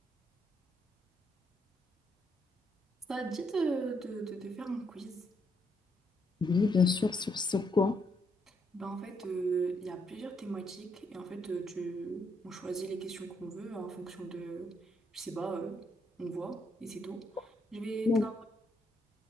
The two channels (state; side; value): normal; both; correlation 0.76